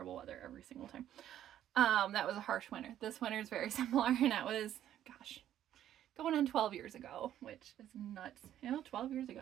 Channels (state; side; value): quieter; left; 11.4 dB